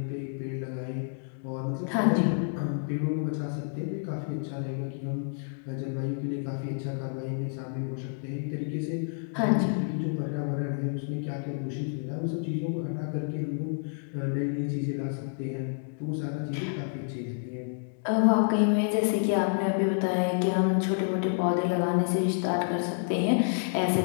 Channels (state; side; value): silent; right; digital silence